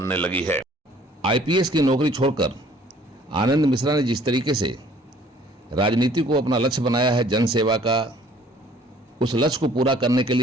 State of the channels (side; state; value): both; normal; correlation 0.56